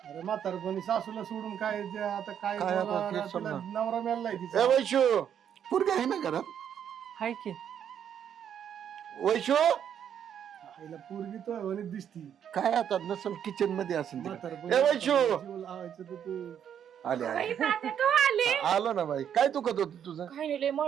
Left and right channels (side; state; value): left; quieter; 8.9 dB